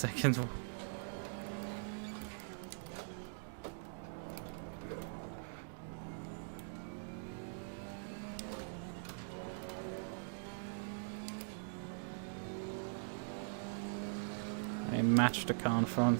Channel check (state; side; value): silent; left; digital silence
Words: I matched the car in front